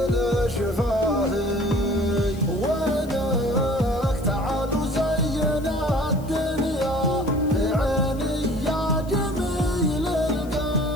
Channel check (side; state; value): left; noise; hiss, 23 dB below the sound